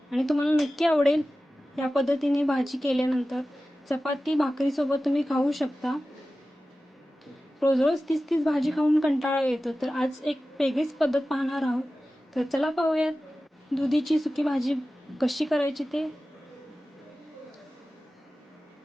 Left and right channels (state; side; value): normal; both; correlation 0.95